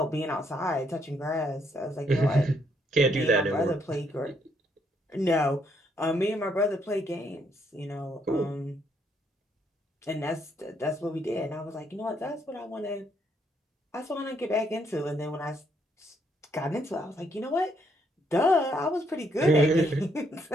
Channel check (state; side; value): normal; both; correlation 0.72